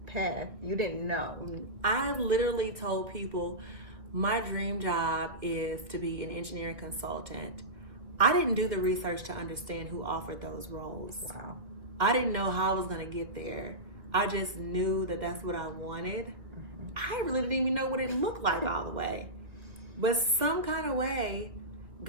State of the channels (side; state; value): left; late; 1.8 ms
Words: path. You didn't know. I literally told people my dream job is to be an engineering consultant. I didn't do the research to understand who offered those roles. Wow. I didn't know how I was going to get there. I just knew that that's what I wanted. I really didn't even know what it looked like all the way. But some kind of way,